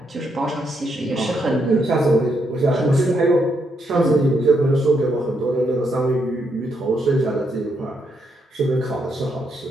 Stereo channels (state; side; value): normal; both; correlation 0.78